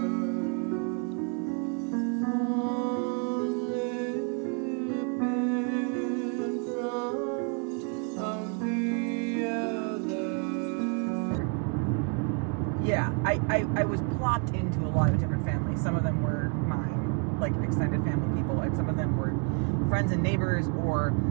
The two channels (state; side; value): quieter; left; 37.4 dB